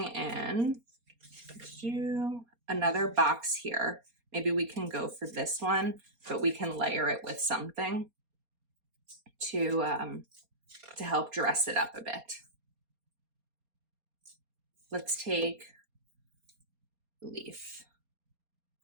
in, do another box here. Maybe we can go for this one, but we can layer it with something to help dress it up a bit. Let's take leaf.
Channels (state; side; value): late; left; 4.3 ms